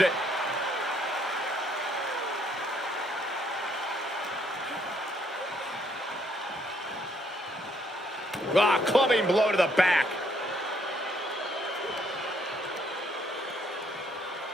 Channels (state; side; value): normal; both; correlation 0.69